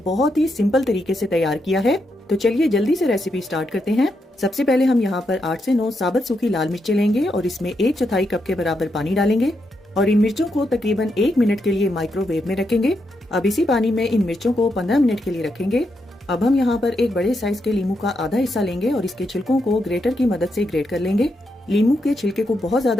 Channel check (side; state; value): both; normal; correlation 0.82